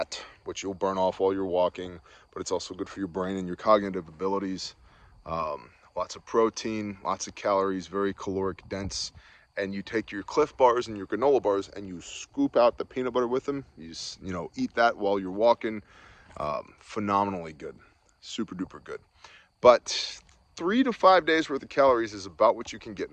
which you'll burn off while you're walking, but it's also good for your brain and your cognitive abilities. Lots of protein, lots of calories, very caloric dense. And you take your Cliff bars and your granola bars and you scoop out the peanut butter with them. You know, eat that while you're walking. Phenomenally good, super duper good. But 3 to 5 days worth of calories is about what you can get in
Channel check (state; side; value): identical; both; correlation 1.00